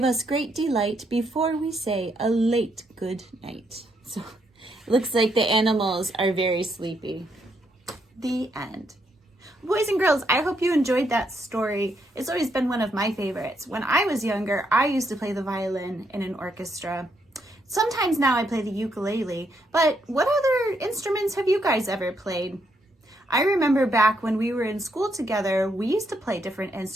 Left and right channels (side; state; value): both; normal; correlation 0.76